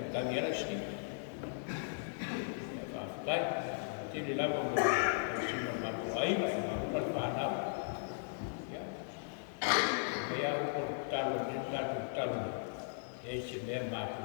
stik. Whaftai, tili lawa mo, sino mabuhay, magpalpanaw. Kaya ako talon, yung talon, eh si Mema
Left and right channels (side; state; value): right; silent; digital silence